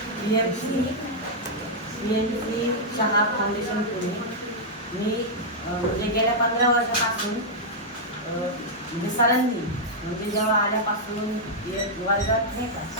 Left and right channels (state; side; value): normal; both; correlation -0.06